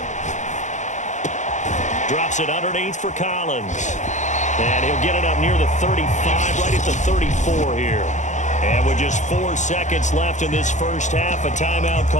Drops it underneath for Collins. And he'll get it up near the 35, right at the 34 here. And with just 4 seconds left in this first half, a timeout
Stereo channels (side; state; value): right; late; 0.34 ms